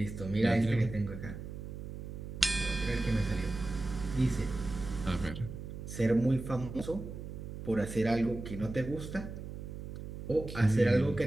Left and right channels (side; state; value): right; noise; hum, 9 dB below the sound